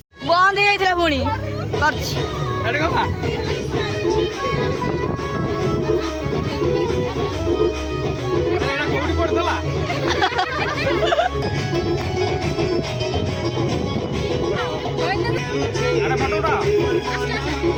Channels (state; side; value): identical; both; correlation 1.00